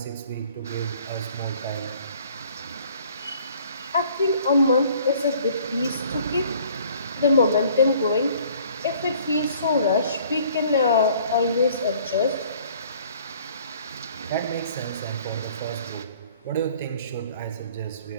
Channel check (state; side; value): inverted; both; correlation -0.55